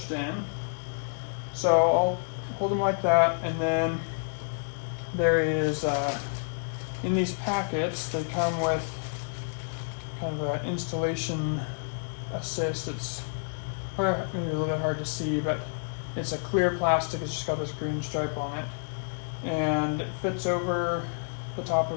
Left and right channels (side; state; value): right; silent; digital silence